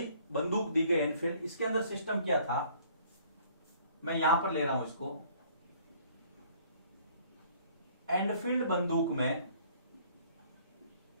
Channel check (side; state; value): both; inverted; correlation -0.58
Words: बंदूक दी गई एनफील्ड। इसके अंदर सिस्टम क्या था, मैं यहां पर ले रहा हूं इसको। एनफील्ड बंदूक में